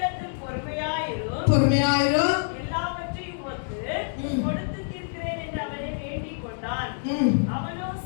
பொறுமையாயிரும் எல்லாவற்றையும் கொடுத்து தீர்க்கிறேன் என்று அவனை வேண்டிக் கொண்டான். அவனோ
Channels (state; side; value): silent; right; digital silence